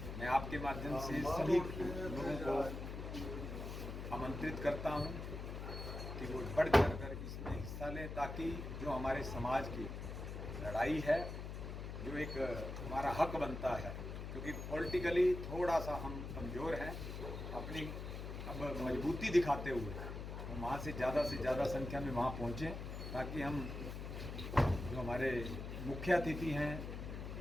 मैं आपके माध्यम से सभी लोगों को आमंत्रित करता हूं कि वो बढ़ चढ़ कर इसमें हिस्सा लें, ताकि जो हमारे समाज की लड़ाई है, जो एक हमारा हक बनता है, क्योंकि पॉलिटिकली थोड़ा सा हम कमज़ोर हैं, अपनी अब मजबूती दिखाते हुए हम वहाँ से ज़्यादा संख्या में वहाँ पहुँचें, ताकि हम जो हमारे मुख्य अतिथि हैं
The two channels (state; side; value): noise; left; hum, 7 dB below the sound